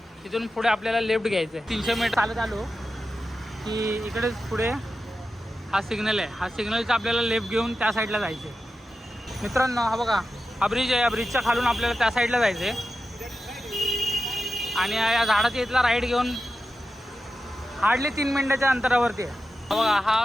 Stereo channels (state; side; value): normal; both; correlation 0.91